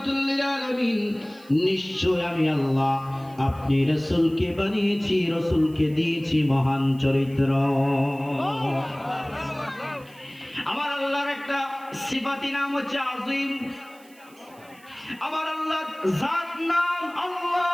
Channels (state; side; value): noise; right; hiss, 27 dB below the sound